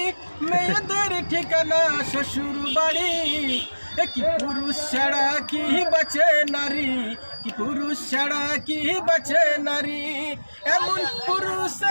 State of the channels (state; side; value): inverted; both; correlation -1.00